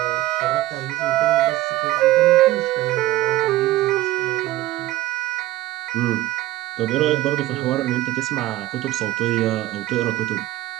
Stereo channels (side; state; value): left; quieter; 16.1 dB